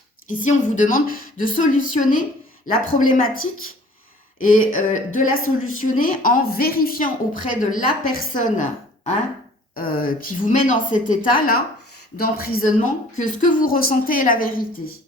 ici on vous demande de solutionner la problématique et de la solutionner en vérifiant auprès de la personne hein, qui vous met dans cet état-là d'emprisonnement que ce que vous ressentez est la vérité.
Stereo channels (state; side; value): normal; both; correlation 0.52